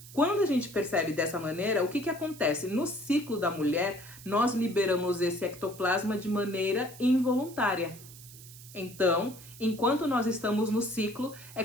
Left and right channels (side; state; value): right; noise; hiss, 18 dB below the sound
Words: Quando a gente percebe dessa maneira, o que acontece? No ciclo da mulher, nós liberamos esse ectoplasma de maneira involuntária. Então, enquanto nós estamos no ciclo, é